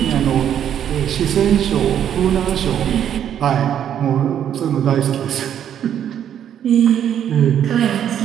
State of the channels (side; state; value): left; quieter; 9.7 dB